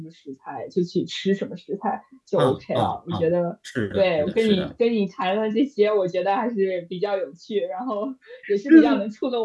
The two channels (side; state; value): both; identical; correlation 1.00